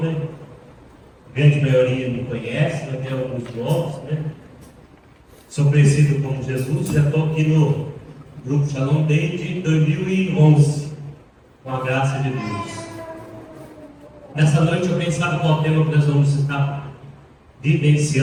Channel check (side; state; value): both; identical; correlation 1.00